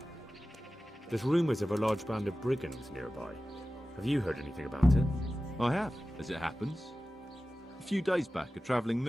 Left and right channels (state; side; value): normal; both; correlation 0.95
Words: There's rumours of a large band of brigands nearby. Have you heard anything about it? I have, as it happens. A few days back, a travelling